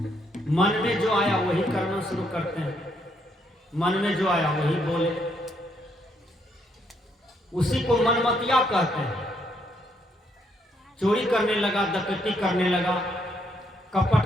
मन में जो आया वही करना शुरू करते हैं, मन में जो आया वही बोले, उसी को मनमतिया कहते हैं। चोरी करने लगा, डकैती करने लगा,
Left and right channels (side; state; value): both; normal; correlation 0.73